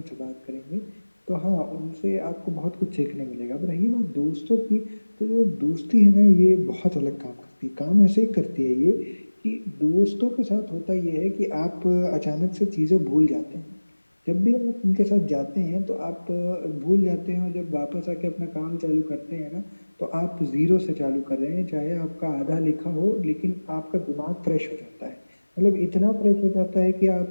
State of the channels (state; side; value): inverted; both; correlation -1.00